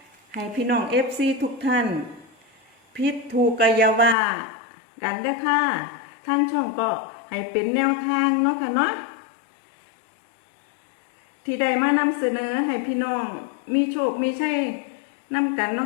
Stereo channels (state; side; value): drops out; right; at 4.2 s